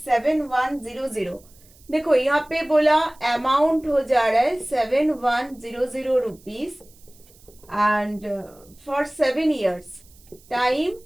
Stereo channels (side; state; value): right; noise; hiss, 27 dB below the sound